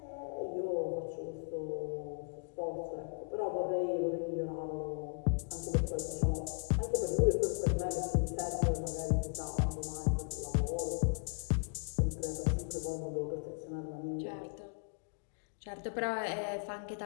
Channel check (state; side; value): silent; right; digital silence